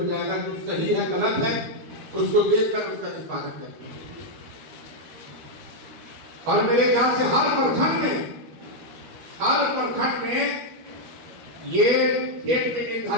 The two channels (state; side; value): late; left; 12 ms